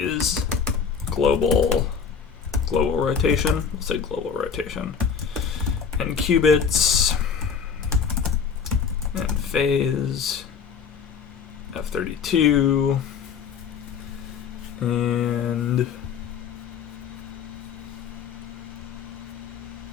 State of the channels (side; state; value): right; quieter; 6.5 dB